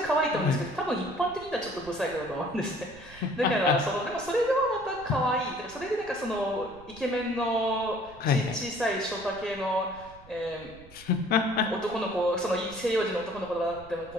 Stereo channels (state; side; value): noise; right; rumble, 21 dB below the sound